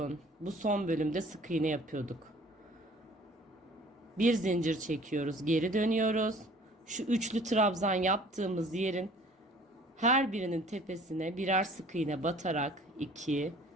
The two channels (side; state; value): both; normal; correlation 0.51